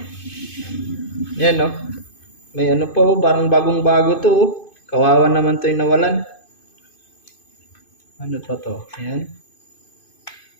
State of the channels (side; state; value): right; late; 2.5 ms